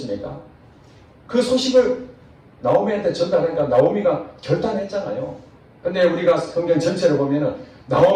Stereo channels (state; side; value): identical; both; correlation 1.00